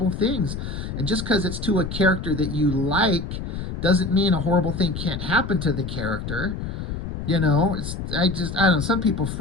things. And just because it's to a character that you like doesn't mean a horrible thing can't happen to the character. I don't know. Some people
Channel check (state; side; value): noise; left; rumble, 6 dB below the sound